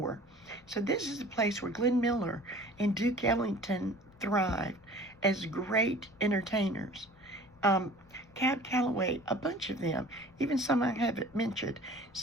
So this is a place where Glenn Miller and Duke Ellington thrived as great entertainers. Cab Calloway, a bunch of them, even some I haven't mentioned.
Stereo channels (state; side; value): noise; left; rumble, 27 dB below the sound